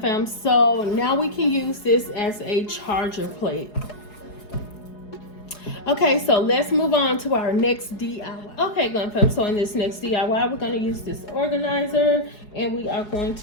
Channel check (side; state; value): right; late; 4.8 ms